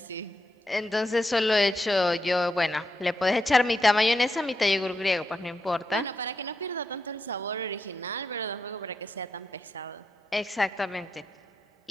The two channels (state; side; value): normal; both; correlation 0.85